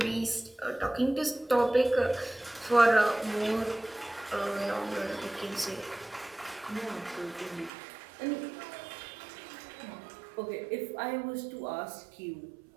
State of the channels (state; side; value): drops out; left; at 7.7 s